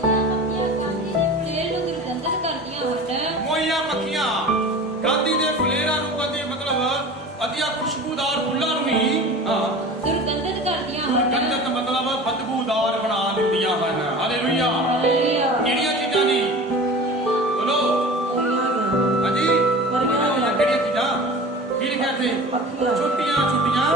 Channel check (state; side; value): normal; both; correlation 0.37